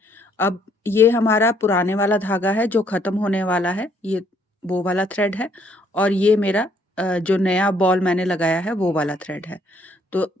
अब ये हमारा पुराने वाला धागा है जो ख़त्म होने वाला है, ये वो वाला थ्रेड है, और ये मेरा जो नया बॉल मैंने लगाया है वो वाला थ्रेड है। तो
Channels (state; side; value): normal; both; correlation 0.66